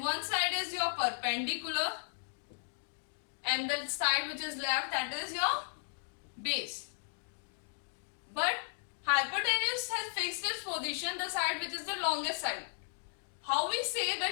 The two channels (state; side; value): silent; right; digital silence